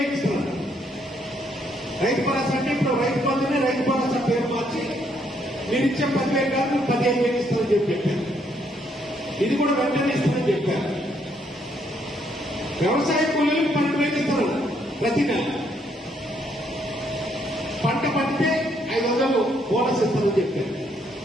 ఇస్తున్నారు. రైతు భరోసా అంటే ఇప్పుడు రైతు బంధునే రైతు భరోసా పేరు మార్చి మీరు ఇచ్చే 10,000 కాదు 15,000 ఇస్తామని చెప్పారు. ఇది కూడా వెంటనే ఇస్తామని చెప్పారు. వ్యవసాయ కూలీలకు 12,000 ఇస్తారు ప్రతి నెల. పంట పండితే 500 బోనస్ ఇస్తామని చెప్పారు.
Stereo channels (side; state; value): both; normal; correlation 0.72